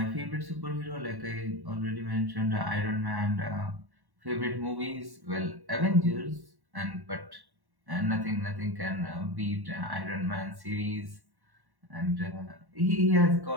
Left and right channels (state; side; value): late; left; 1.1 ms